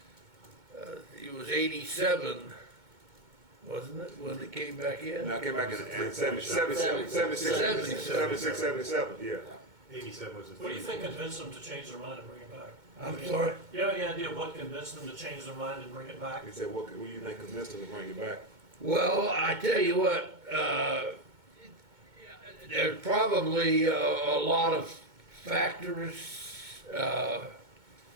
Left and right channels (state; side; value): late; left; 2.2 ms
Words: it was 87, wasn't it, when it came back in? Now, I came back in 76, yeah. 87 was the. What do you think convinced them to change their mind and bring it back? I'm sorry? You have any idea what convinced them to change their mind and bring it back? He said, what do you think convinced him to bring it back? Well, I tell you what, there's probably a lot of factors, but